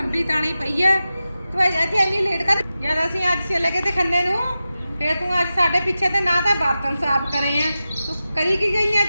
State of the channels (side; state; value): both; inverted; correlation -0.93